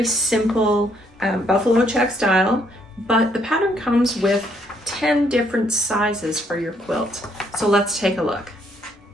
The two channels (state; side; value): normal; both; correlation 0.70